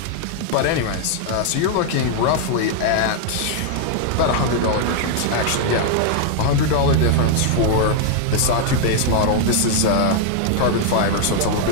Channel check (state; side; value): different; both; correlation 0.00